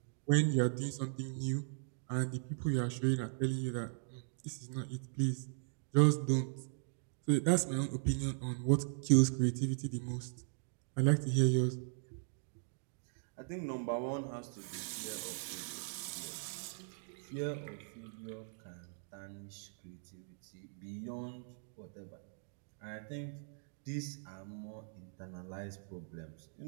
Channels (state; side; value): silent; left; digital silence